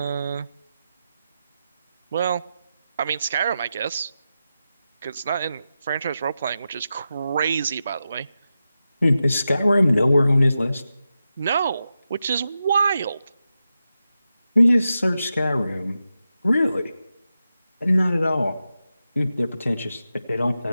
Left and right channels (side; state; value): both; inverted; correlation -0.90